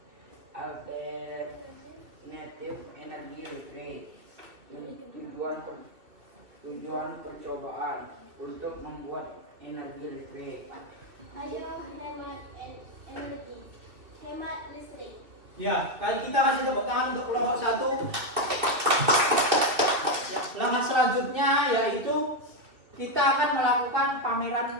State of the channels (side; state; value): left; late; 2.7 ms